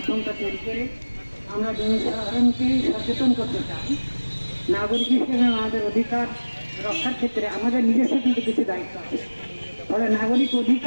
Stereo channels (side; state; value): both; inverted; correlation -1.00